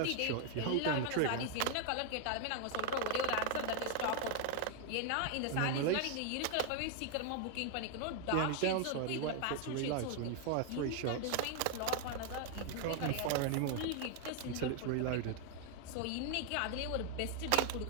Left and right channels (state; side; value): different; both; correlation 0.00